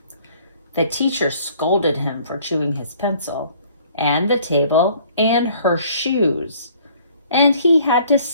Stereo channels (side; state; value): both; inverted; correlation -0.57